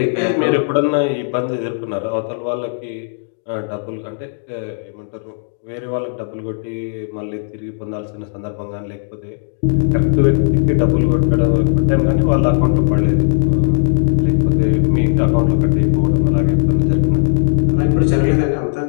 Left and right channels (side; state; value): right; silent; digital silence